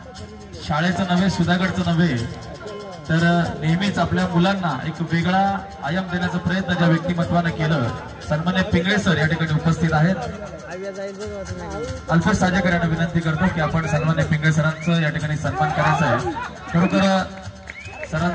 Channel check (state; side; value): identical; both; correlation 1.00